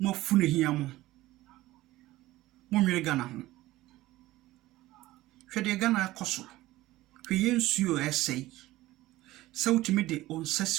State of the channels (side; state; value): left; quieter; 17.1 dB